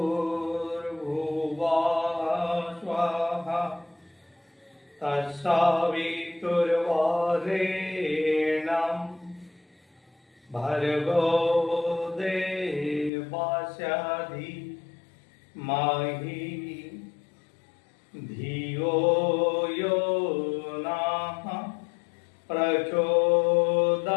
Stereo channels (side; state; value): right; drops out; at 13.1 s